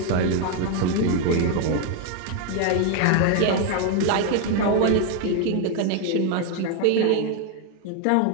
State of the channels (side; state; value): both; different; correlation 0.01